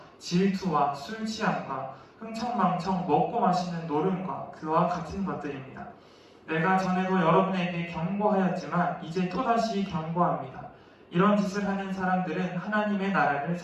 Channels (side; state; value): both; identical; correlation 1.00